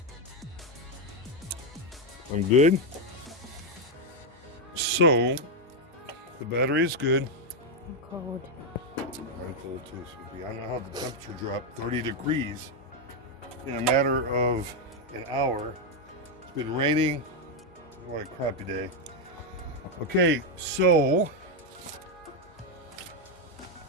I'm good. So, the battery is good. I'm cold. I'm cold too, Sophie. I don't know how the temperature dropped 30 degrees in a matter of an hour. It's been raining. What a crappy day. Okay, so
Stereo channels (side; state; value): both; normal; correlation 0.03